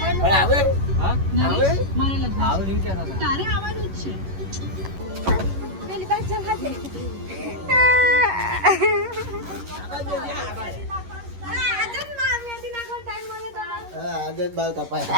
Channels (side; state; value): left; late; 11 ms